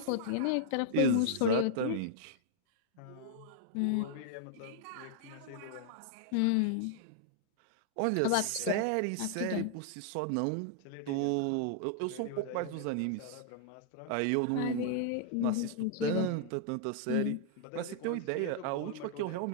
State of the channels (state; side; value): different; both; correlation -0.01